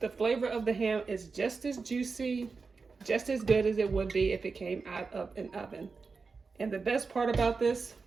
The flavor of the ham is just as juicy, just as good as it would be if it came out of an oven. And the best part about this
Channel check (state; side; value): quieter; left; 4.6 dB